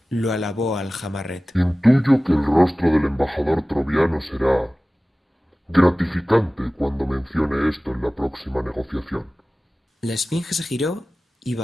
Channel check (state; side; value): normal; both; correlation 0.97